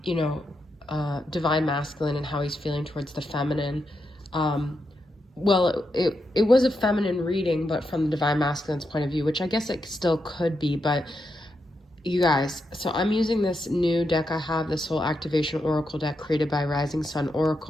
you know, divine masculine and how he's feeling towards the feminine. Um, well, it was a feminine reading, but from the divine masculine's point of view, which I guess it still could be. But you guys, so I'm using this new deck I have, this whole activation oracle deck created by Rising Sun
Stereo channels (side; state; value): both; normal; correlation 0.84